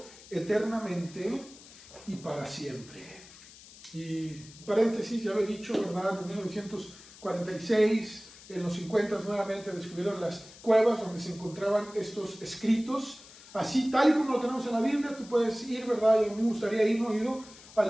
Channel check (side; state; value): left; noise; hiss, 20 dB below the sound